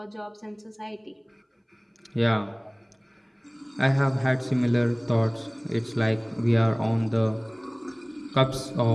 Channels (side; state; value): both; identical; correlation 1.00